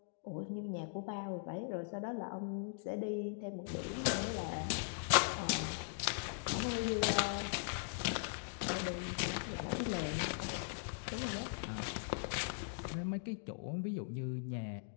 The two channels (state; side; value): silent; right; digital silence